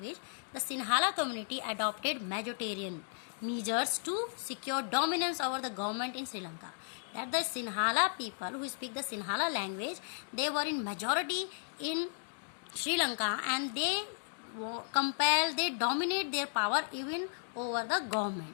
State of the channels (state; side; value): silent; right; digital silence